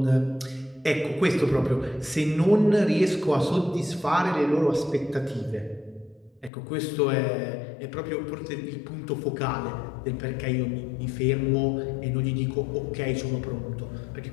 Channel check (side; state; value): right; drops out; at 6.5 s